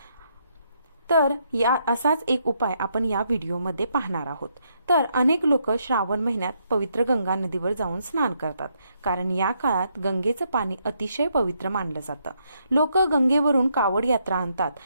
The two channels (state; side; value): inverted; both; correlation -0.76